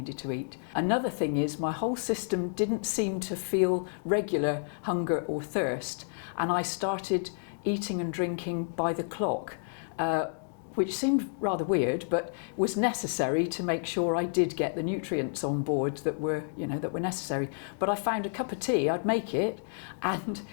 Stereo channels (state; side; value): silent; right; digital silence